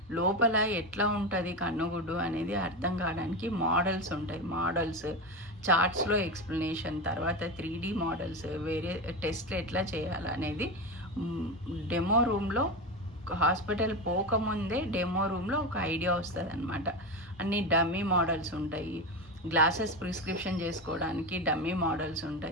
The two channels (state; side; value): normal; both; correlation 0.18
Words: లోపల ఎట్లా ఉంటుంది కన్నుగుడ్డు అనేది అర్థం కావడానికి మోడల్స్ ఉంటాయి. మోడల్స్ చార్ట్స్లో ఎక్స్ప్లెనేషన్, తర్వాత 3D మోడల్స్, వేరే టెస్ట్లు ఎట్లా చేయాలనేది డెమో రూమ్లో హాస్పిటల్ పోకముందే డెమో రూమ్లో ఒక ఐడియా వస్తుంది అనమాట. అన్ని డమ్మీ మోడల్స్ ఉంటాయి, గ్లాసెస్ ప్రిస్క్రిప్షన్ చేసుకోవడానికి డమ్మీ మోడల్స్